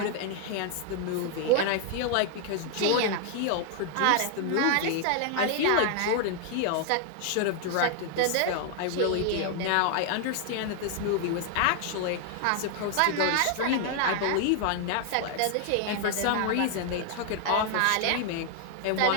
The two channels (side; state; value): both; different; correlation 0.00